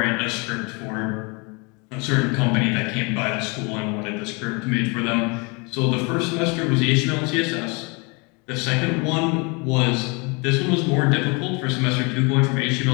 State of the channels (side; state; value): right; quieter; 30.1 dB